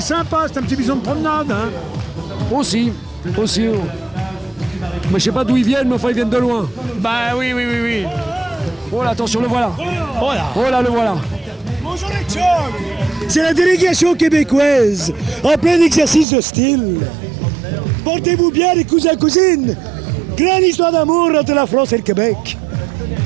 sympa, c'est un petit bison de promenade. Hein. Aussi. Mais je sais pas d'où ils viennent, mais enfin ils viennent de loin. Bah oui. Oh là, attention, le voilà. Voilà. Oh là, le voilà. Bonjour les chums. C'est la délégation québécoise en plein exercice de style. Portez-vous bien les cousins cousines. Grande histoire d'amour entre la France et le Québec.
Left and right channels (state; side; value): drops out; left; at 16.2 s